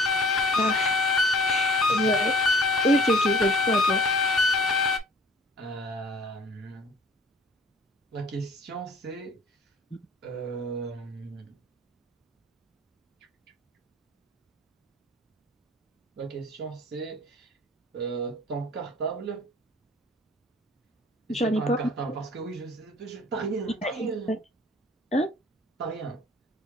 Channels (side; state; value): both; normal; correlation 0.51